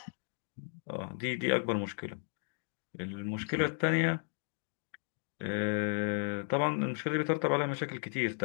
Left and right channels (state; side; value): silent; right; 55 dB below the other